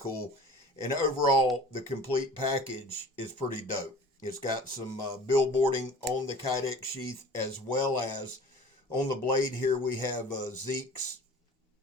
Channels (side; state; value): both; normal; correlation 0.44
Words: And overall, the complete package is pretty dope. It's got some billboarding on the Kydex sheath, as well as on the blade here we have Zeke's